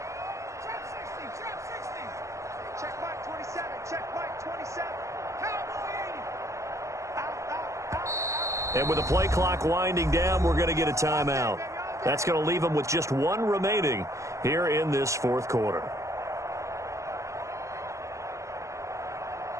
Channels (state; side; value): late; left; 0.15 ms